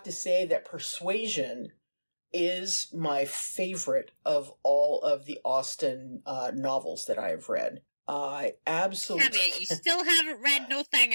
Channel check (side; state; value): both; inverted; correlation -1.00